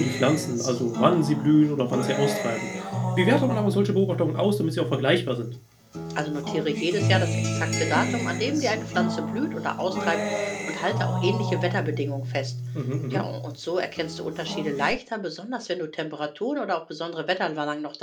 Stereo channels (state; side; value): identical; both; correlation 1.00